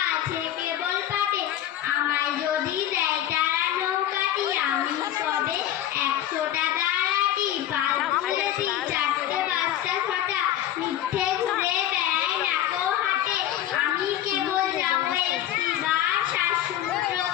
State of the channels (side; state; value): right; quieter; 12.1 dB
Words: আছে কেবল পাটে। আমায় যদি দেয় তারা নৌকাটি, আমি তবে 100টা দাঁড়াটি। পাল তুলেছি 4টে 5টা 6টা, মিথ্যে ঘুরে বেড়াই নাকো হাটে। আমি কেবল যাবো একটিবার শ্বাসমূত্র